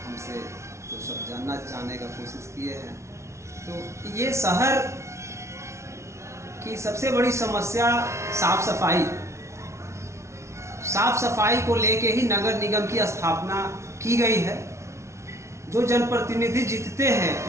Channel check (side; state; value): left; late; 0.13 ms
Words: हमसे तो सब जानने का कोशिश किए हैं। तो ये शहर की सबसे बड़ी समस्या साफ सफाई। साफ सफाई को लेके ही नगर निगम की स्थापना की गई है। जो जनप्रतिनिधि जीतते हैं